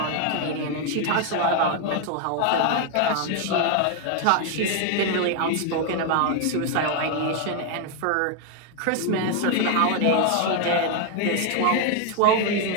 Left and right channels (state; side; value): different; both; correlation 0.01